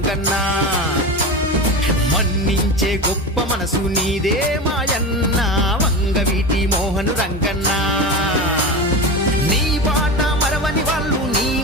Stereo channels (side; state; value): both; normal; correlation 0.24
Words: మన్నించే గొప్ప మనసు నీదే మాయన్న వంగవీటి మోహను రంగన్న నీ బాట మరవని వాళ్ళు నీ